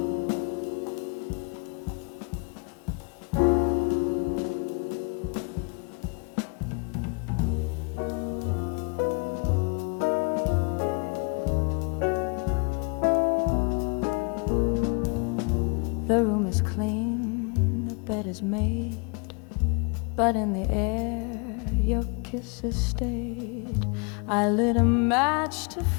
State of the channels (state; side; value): quieter; right; 34.1 dB